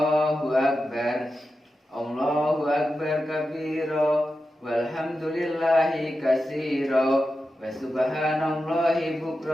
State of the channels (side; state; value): both; normal; correlation 0.91